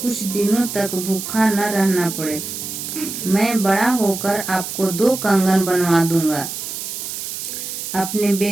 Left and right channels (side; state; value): right; noise; hiss, 7 dB below the sound